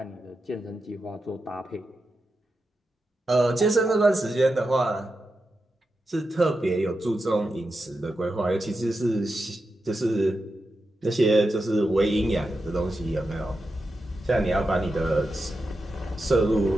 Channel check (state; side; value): normal; both; correlation 0.89